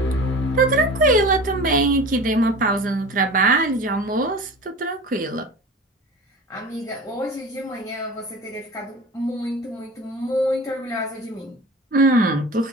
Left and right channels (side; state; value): both; normal; correlation 0.36